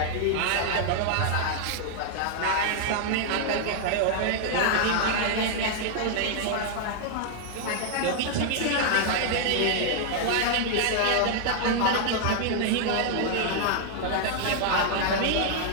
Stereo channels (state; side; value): different; both; correlation -0.01